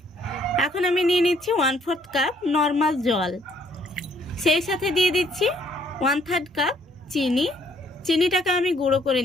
এখন আমি নিয়ে নিচ্ছি 1/4 কাপ নর্মাল জল, সেই সাথে দিয়ে দিচ্ছি 1/3 কাপ চিনি। চিনিটাকে আমি গুঁড়ো করে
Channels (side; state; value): both; normal; correlation 0.65